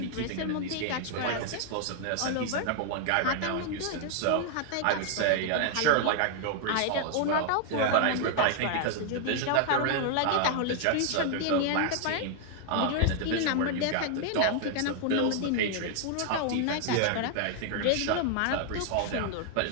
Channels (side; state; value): both; different; correlation 0.00